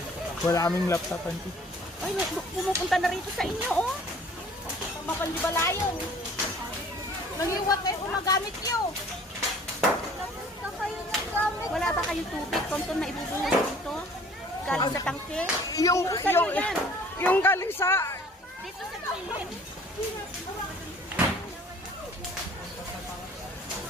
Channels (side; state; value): both; normal; correlation 0.52